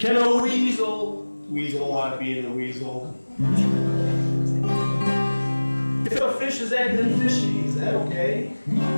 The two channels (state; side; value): inverted; both; correlation -1.00